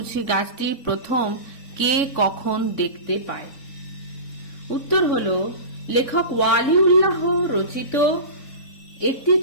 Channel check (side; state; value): right; late; 3.5 ms